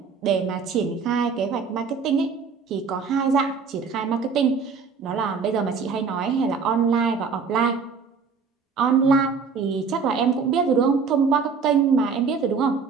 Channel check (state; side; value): quieter; left; 5.4 dB